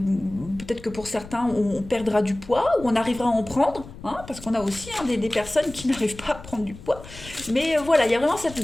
que pour certains, on perdra du poids ou on arrivera à en prendre, hein, parce qu'on a aussi des personnes qui n'arrivent pas à prendre du poids. Mais voilà, il y a vraiment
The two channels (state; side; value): noise; left; rumble, 16 dB below the sound